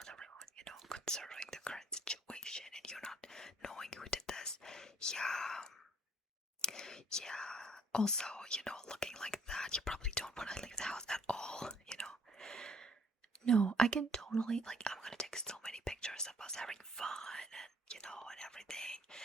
everyone, you know, considering the current situation and you're not knowing who did this. Yeah, yeah. Also, you know, looking like that, you probably don't want to leave the house at all, you know. No, I can totally like I'm gonna take so many pictures of us having fun and you know and everything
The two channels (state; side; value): normal; both; correlation 0.61